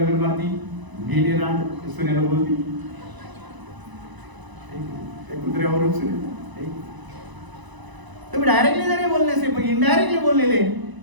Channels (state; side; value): late; left; 1.0 ms